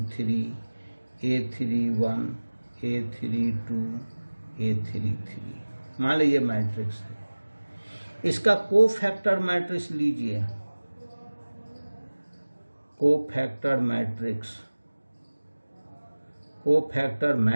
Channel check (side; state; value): both; inverted; correlation -1.00